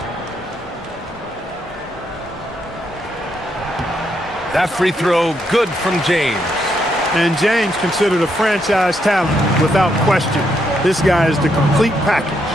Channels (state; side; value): normal; both; correlation 0.77